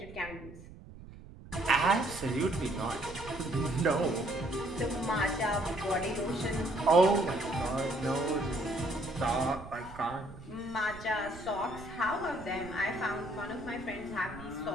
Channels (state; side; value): noise; right; rumble, 16 dB below the sound